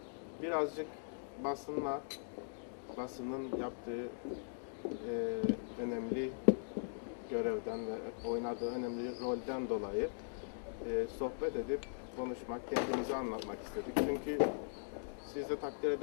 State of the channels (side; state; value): right; silent; digital silence